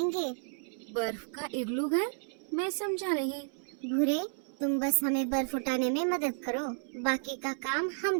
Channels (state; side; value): silent; left; 56 dB below the other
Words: बर्फ का इग्लू घर? मैं समझा नहीं। भूरे, तुम बस हमें बर्फ उठाने में मदद करो, बाकी का काम